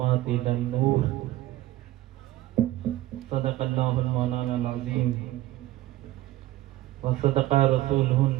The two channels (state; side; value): quieter; left; 15.8 dB